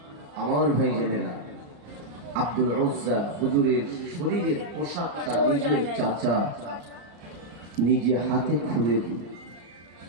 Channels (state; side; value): late; left; 34 ms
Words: আমার ভাইজানেরা আব্দুল উজ্জা হুজুরের শরীরের পোশাকটা নিজের চাচা নিজে হাতে খুলে দিলেন।